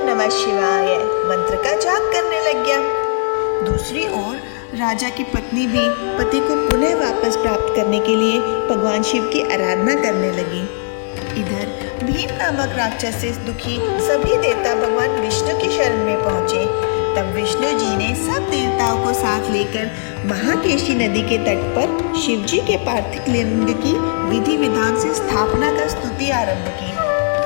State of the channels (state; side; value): silent; right; digital silence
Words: नमः शिवाय मंत्र का जाप करने लग गया। दूसरी ओर राजा की पत्नी भी पति को पुनः वापस प्राप्त करने के लिए भगवान शिव की आराधना करने लगी। इधर भीम नामक राक्षस से दुखी सभी देवता भगवान विष्णु की शरण में पहुंचे। तब विष्णु जी ने सब देवताओं को साथ लेकर महाकेशी नदी के तट पर शिव जी के पार्थिव लिंग की विधि विधान से स्थापना कर स्तुति आरंभ की।